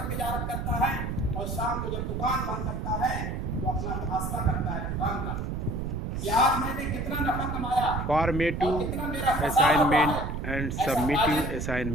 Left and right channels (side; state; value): right; noise; rumble, 3 dB below the sound